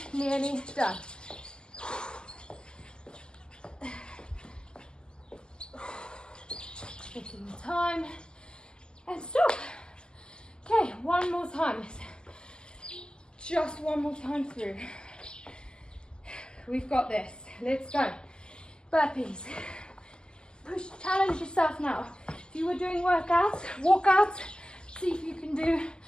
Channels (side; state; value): right; late; 0.047 ms